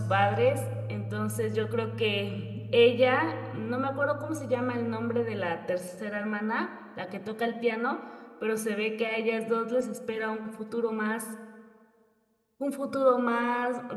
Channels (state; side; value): identical; both; correlation 1.00